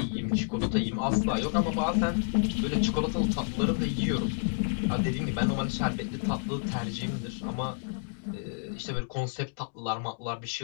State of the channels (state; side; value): silent; right; digital silence